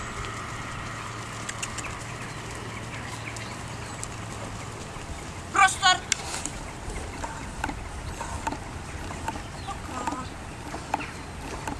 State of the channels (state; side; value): identical; both; correlation 1.00